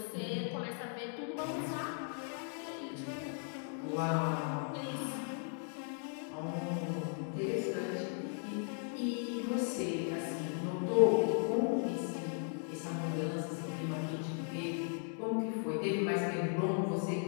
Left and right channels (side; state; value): right; silent; 53 dB below the other